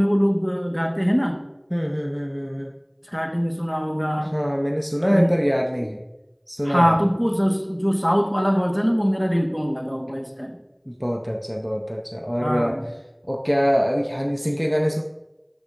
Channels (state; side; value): identical; both; correlation 1.00